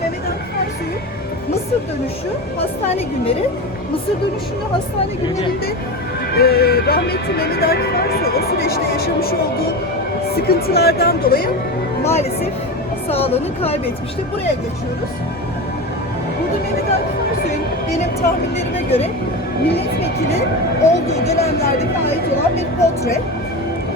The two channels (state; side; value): normal; both; correlation 0.23